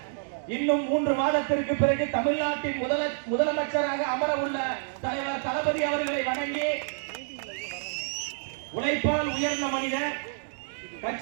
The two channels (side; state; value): left; silent; digital silence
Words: இன்னும் 3 மாதத்திற்கு பிறகு தமிழ்நாட்டின் முதலமைச்சராக அமர உள்ள தலைவர் தளபதி அவர்களை வணங்கி, உழைப்பால் உயர்ந்த மனிதர்,